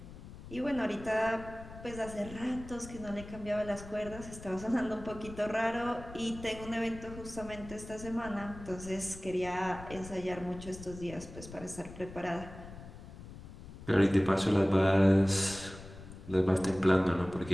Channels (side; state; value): left; noise; rumble, 14 dB below the sound